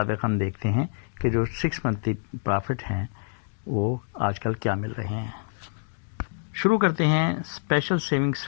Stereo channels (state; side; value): silent; right; digital silence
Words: ہم دیکھتے ہیں کہ جو 6 منتھلی پرافٹ ہیں وہ آج کل کیا مل رہے ہیں. شروع کرتے ہیں اسپیشل سیونگ